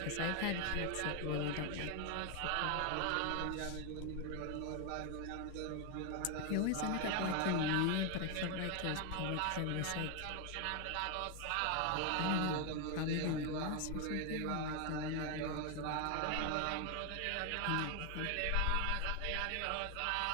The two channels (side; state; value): both; different; correlation 0.01